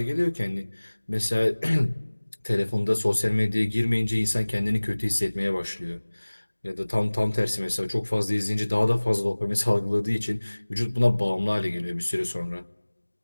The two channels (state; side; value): inverted; both; correlation -1.00